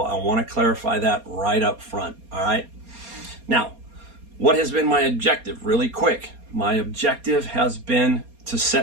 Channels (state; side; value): late; left; 4.3 ms